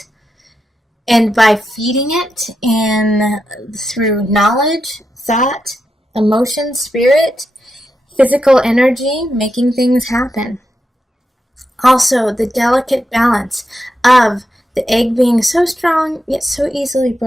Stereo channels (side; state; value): both; normal; correlation 0.86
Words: And by feeding it through knowledge, thought, emotion, spirit, physical energy, making things happen. Also, the delicate balance of the egg being so strong, yet so easily